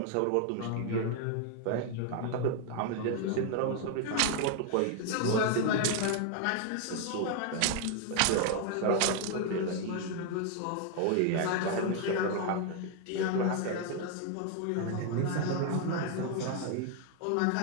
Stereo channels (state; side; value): different; both; correlation 0.00